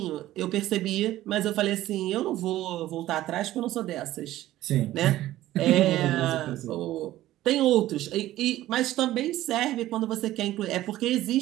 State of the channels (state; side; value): quieter; left; 14.9 dB